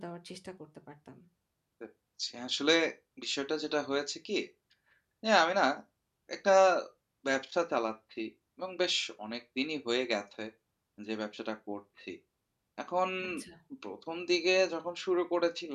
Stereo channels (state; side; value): identical; both; correlation 1.00